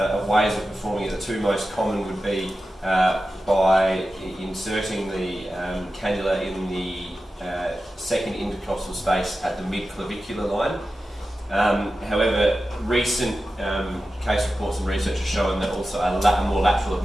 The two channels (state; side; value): normal; both; correlation 0.93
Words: ways of performing it. The two most common would be by inserting the cannula in the second intercostal space at the mid-clavicular line. However, recent case reports and research have shown that also a more lateral